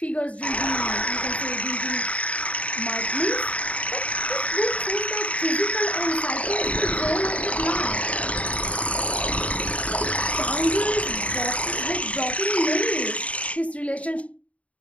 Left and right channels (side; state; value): right; late; 0.065 ms